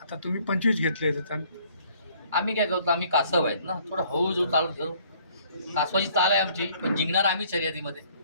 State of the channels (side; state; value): both; inverted; correlation -0.60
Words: आता तुम्ही 25 घेतले त्यांनी. आम्ही काय करतो, आम्ही कासव आहेत ना, थोडं हळूहळू चालत जाऊ. कासवाची चाल आहे आमची, पण जिंकणार आम्ही शर्यतीमध्ये.